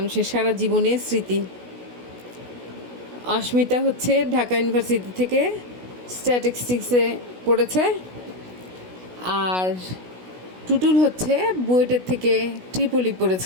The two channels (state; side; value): late; left; 16 ms